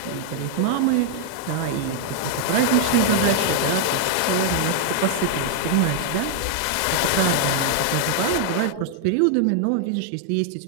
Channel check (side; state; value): both; different; correlation 0.00